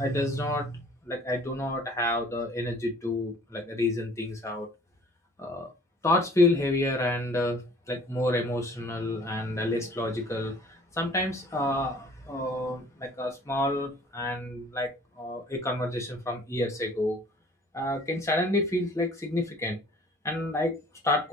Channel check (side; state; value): both; normal; correlation 0.52